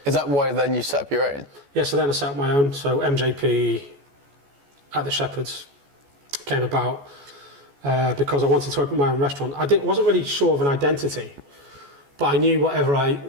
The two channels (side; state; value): left; late; 14 ms